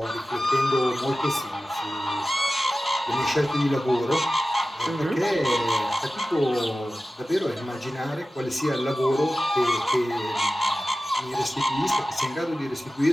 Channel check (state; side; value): normal; both; correlation 0.95